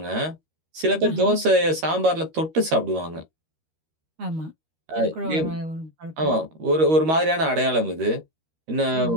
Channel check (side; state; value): left; late; 13 ms